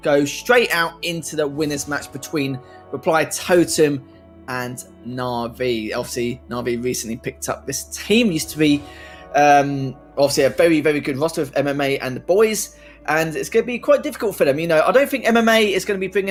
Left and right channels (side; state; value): both; identical; correlation 1.00